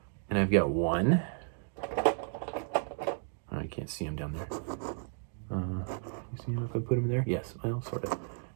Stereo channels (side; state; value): left; silent; digital silence